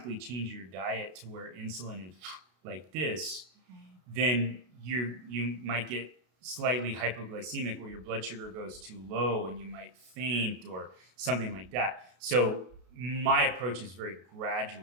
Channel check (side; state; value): left; late; 33 ms